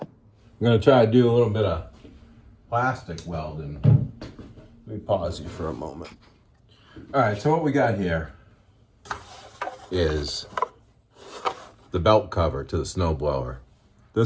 I'm gonna try to do a little bit of plastic welding. Let me pause you for a moment. All right, so what we got here is the belt cover to the snowblower.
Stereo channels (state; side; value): identical; both; correlation 1.00